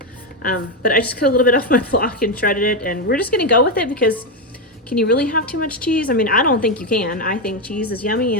But I just cut a little bit off my block and shredded it, and we're just gonna go with it because can you really have too much cheese? I mean, I don't think you can. I think cheese is yummy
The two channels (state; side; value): normal; both; correlation 0.08